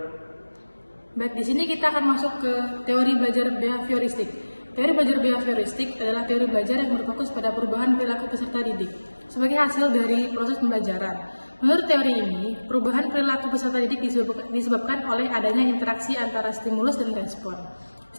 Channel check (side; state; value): both; inverted; correlation -1.00